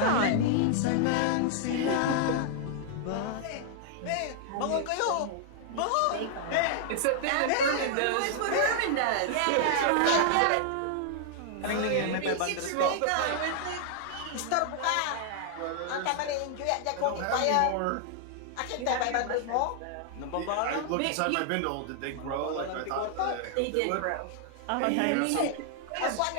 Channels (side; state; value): both; different; correlation 0.00